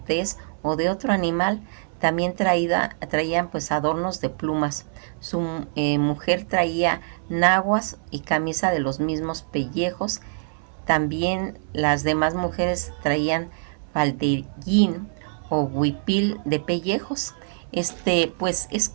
o de otro animal. También traían pues adornos de plumas. Su mujer traía naguas y camisa de los mismos pellejos. También las demás mujeres traían faldellín o huipil de pellejos. Pues es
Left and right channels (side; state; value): left; silent; digital silence